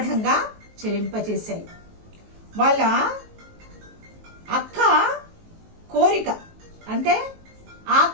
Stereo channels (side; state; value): left; late; 19 ms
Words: చెలింపచేశాయి. వాళ్ళ అక్క కోరిక అంటే